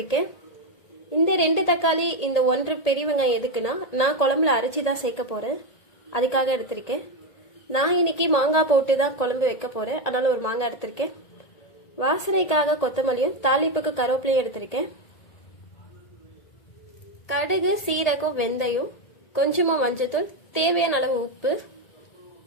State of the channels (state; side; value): late; right; 1.8 ms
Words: இந்த 2 தக்காளி இந்த 1 பெரிய வெங்காயம் எதுக்குன்னா நான் குழம்புல அரைச்சி தான் சேர்க்க போகிறேன், அதுக்காக எடுத்திருக்கேன். நான் இன்னைக்கு மாங்காய் போட்டு தான் குழம்பு வைக்க போகிறேன், அதனால் ஒரு மாங்காய் எடுத்திருக்கேன். வாசனைக்காக கொத்தமல்லியும் தாளிப்புக்கு கருவேப்பிலையும் எடுத்திருக்கேன். கடுகு, சீரகம், வெந்தயம், கொஞ்சமாக மஞ்சத்தூள், தேவையான அளவு உப்பு.